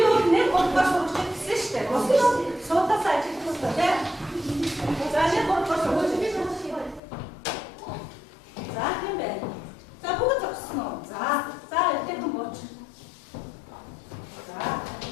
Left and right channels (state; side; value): drops out; right; at 7.0 s